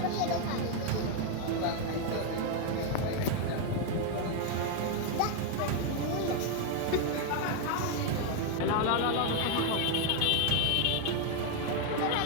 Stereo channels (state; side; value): different; both; correlation 0.01